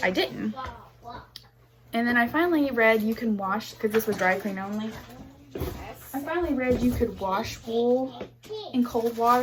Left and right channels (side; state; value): both; identical; correlation 1.00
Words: I didn't. And then I finally read you can wash, because this was dry clean only. I finally read you could wash wool in cold